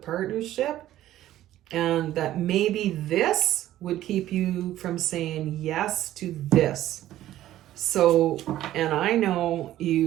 and that maybe this would keep you from saying yes to this. So, and I know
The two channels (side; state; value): left; quieter; 13.6 dB